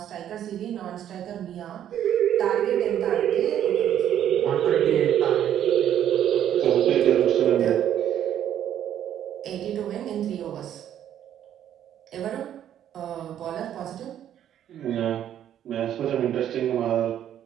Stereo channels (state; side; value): quieter; left; 10.6 dB